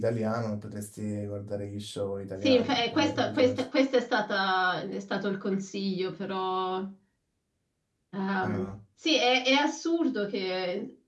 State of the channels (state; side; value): identical; both; correlation 1.00